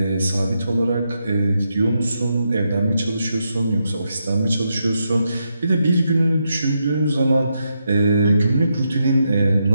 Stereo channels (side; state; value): both; inverted; correlation -0.83